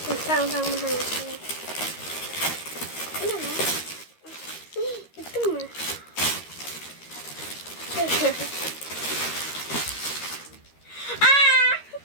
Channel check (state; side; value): late; right; 13 ms